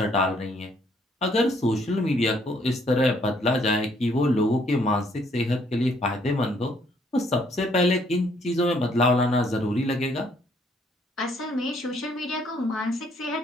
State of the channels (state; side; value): normal; both; correlation 0.66